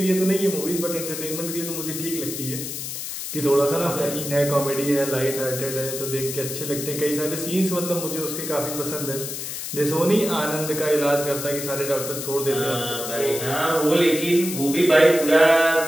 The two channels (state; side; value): noise; left; hiss, 6 dB below the sound